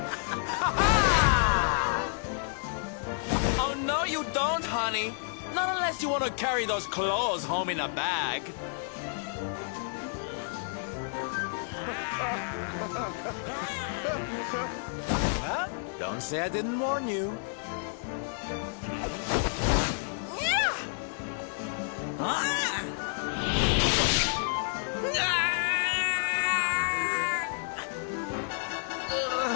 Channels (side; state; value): right; silent; 58 dB below the other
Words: Oh, no, you don't, honey. Not unless you want to carry those clothes home in a bag. Well, don't say I didn't warn you.